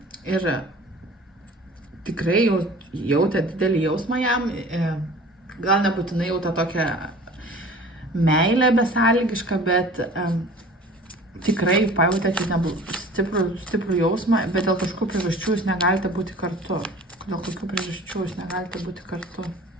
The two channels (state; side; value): normal; both; correlation 0.44